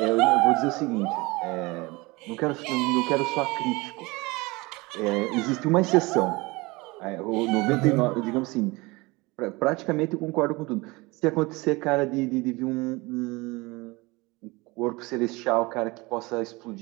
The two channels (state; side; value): quieter; left; 23.8 dB